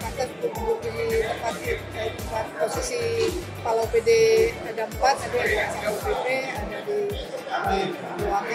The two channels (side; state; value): both; identical; correlation 1.00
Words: pantas untuk duduk di tempat posisi Kepala OPD ada 4, ada di SPP, ada di